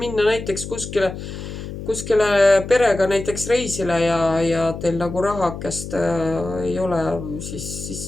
minna näiteks kuskile perega näiteks reisile ja teil nagu rahakest ei ole,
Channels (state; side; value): noise; left; hum, 9 dB below the sound